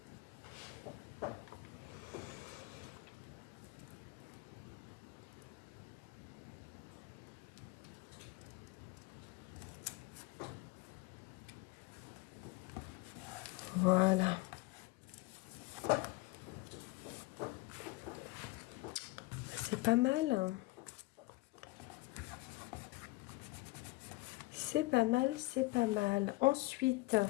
Voilà. C'est pas mal. C'est pas mal, c'est pas mal. Ensuite,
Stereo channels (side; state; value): right; quieter; 21.7 dB